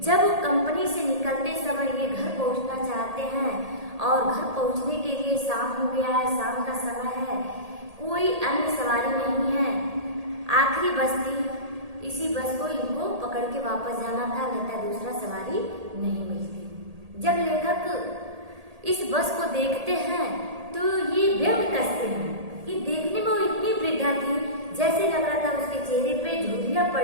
जब कंपनी से निकलते समय ये घर पहुंचना चाहते हैं और घर पहुंचने के लिए शाम हो गया है, शाम का समय है, कोई अन्य सवारी नहीं है, आखिरी बस थी। इसी बस को इनको पकड़ के वापस जाना था, नहीं दूसरा सवारी नहीं मिलती। जब लेखक इस बस को देखते हैं तो ये व्यंग कसते हैं। ये देखने में वो इतनी वृद्धा थी, जैसे लग रहा था उसके चेहरे पे झुर्रियां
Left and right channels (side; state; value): left; late; 1.8 ms